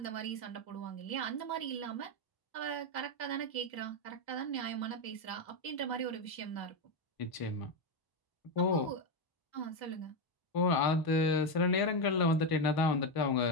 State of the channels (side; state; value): right; late; 1.0 ms